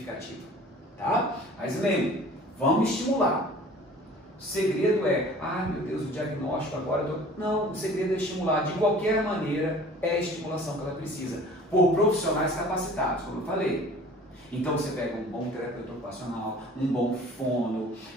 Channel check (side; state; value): both; normal; correlation 0.47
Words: tá? Mas lembre, vamos estimular. O segredo é, meu Deus, o diagnóstico agora... Não, o segredo é estimular. De qualquer maneira, é a estimulação que ela precisa, por profissionais capacitados, como eu falei. Então você pega um bom terapeuta ocupacional, um bom fono.